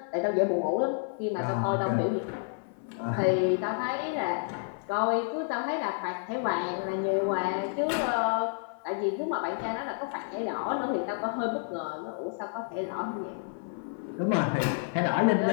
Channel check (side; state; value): right; silent; 58 dB below the other